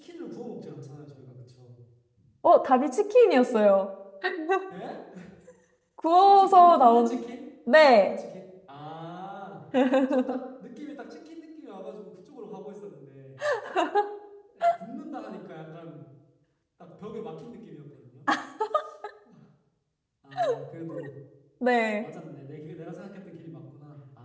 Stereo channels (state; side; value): identical; both; correlation 1.00